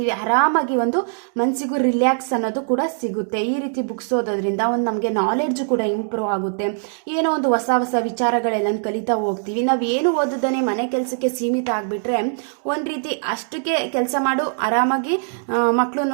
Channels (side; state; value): left; silent; digital silence